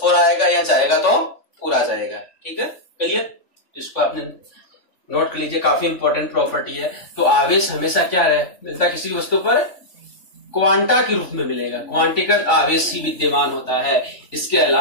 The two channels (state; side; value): late; right; 3.5 ms